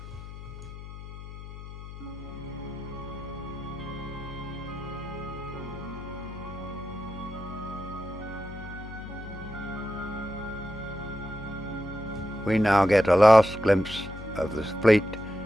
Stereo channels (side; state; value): left; noise; hum, 12 dB below the sound